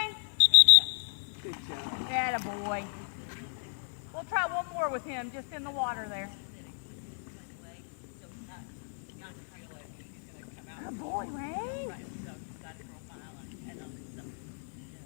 Good job. Yeah, boy. We'll try one more with him, just in the water there. Oh, boy, Rain. Right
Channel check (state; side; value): silent; right; digital silence